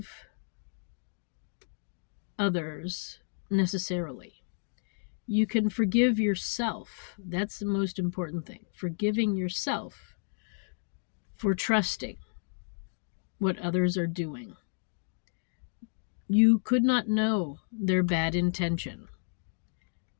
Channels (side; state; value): right; silent; digital silence